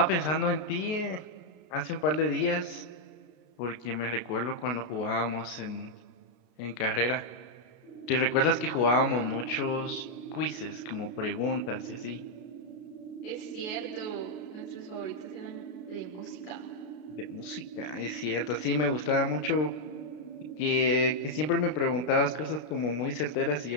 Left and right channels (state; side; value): late; right; 33 ms